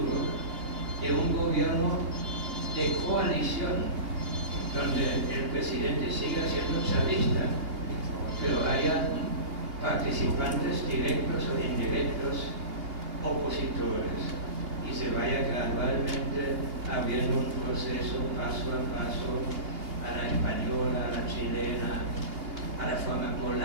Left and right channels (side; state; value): left; late; 2.8 ms